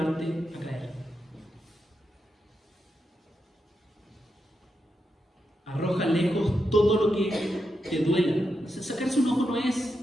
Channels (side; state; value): both; normal; correlation 0.86